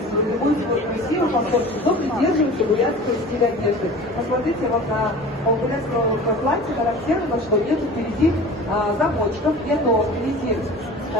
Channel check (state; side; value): normal; both; correlation 0.40